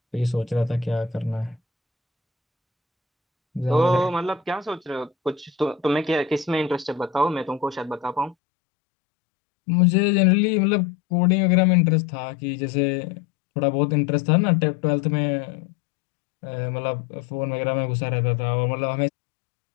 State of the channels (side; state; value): right; drops out; at 8.3 s